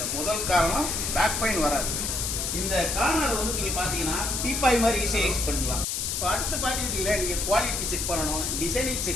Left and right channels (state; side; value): noise; left; hiss, 1 dB below the sound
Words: முதல் காரணம் பேக் பெயின் வராது. இந்த கார்னர் வந்து நீங்கள் பார்த்தீங்கன்னா டீப்பாய் மாதிரி ஈஸியாக யூஸ் பண்ணலாம். இப்போ அடுத்து பார்த்தீங்கன்னா நீங்கள் குவாலிட்டி செக் பண்ணணும், டிசைனிங்